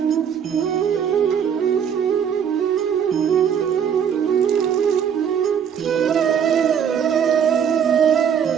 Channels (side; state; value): left; quieter; 8.0 dB